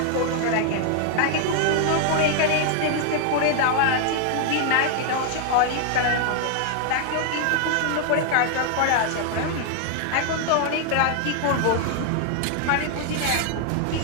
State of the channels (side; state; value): both; different; correlation 0.00